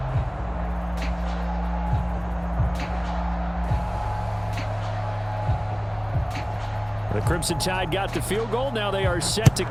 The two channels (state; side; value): identical; both; correlation 1.00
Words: The Crimson Tide got the field goal. Now they are set to